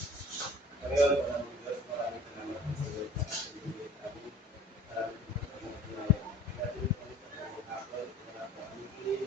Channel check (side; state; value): both; normal; correlation 0.46